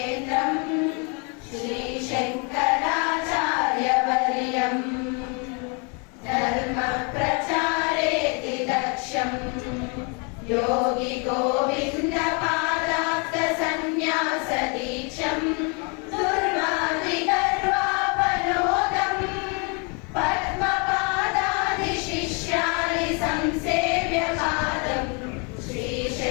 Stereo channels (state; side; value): quieter; right; 34.5 dB